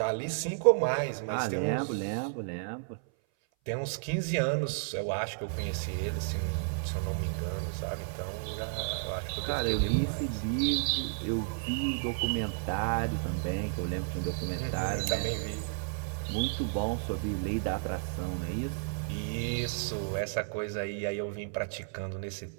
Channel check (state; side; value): silent; left; 56 dB below the other